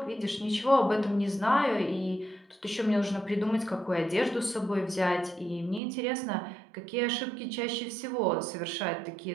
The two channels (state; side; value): drops out; left; at 5.8 s